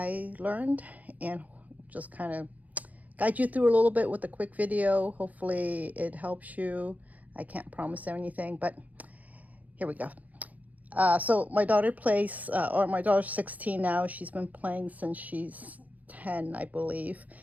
learned and just kind of guide you through a little bit with a quick video. Hopefully it helps you. I can't promise anything, but here we go. So my daughter plays, or my daughter's 16 now. She's been playing since she's 10, I believe.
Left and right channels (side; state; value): left; late; 0.077 ms